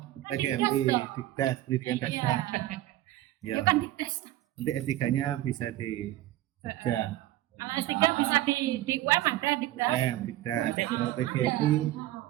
Kan PGMI, dikdas dong. Dikdas, pendidikan dasar. Iya. Ya. Bukan dikdas. Nanti S3-nya bisa di Jogja. Kalau S3 bisa di UM ada dikdas. Dikdas. Kalau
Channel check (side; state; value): left; quieter; 15.2 dB